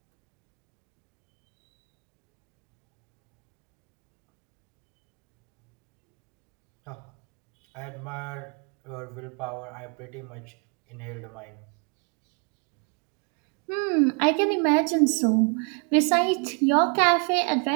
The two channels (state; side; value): quieter; left; 37.4 dB